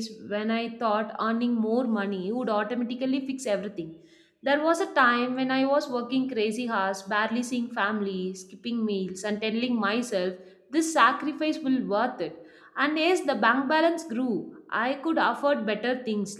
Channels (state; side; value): identical; both; correlation 1.00